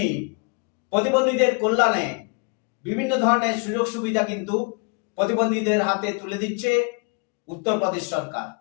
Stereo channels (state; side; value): quieter; right; 35.7 dB